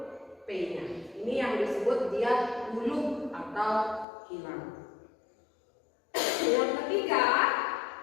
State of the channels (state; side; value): drops out; right; at 4.0 s